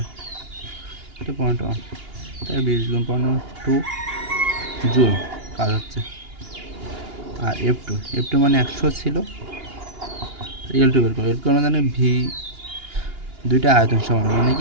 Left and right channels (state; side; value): late; left; 2.8 ms